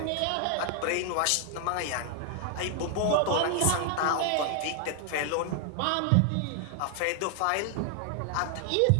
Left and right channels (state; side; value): different; both; correlation 0.00